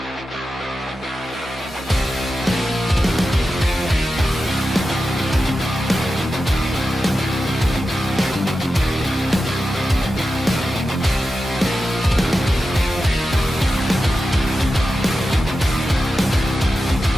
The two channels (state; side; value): normal; both; correlation 0.91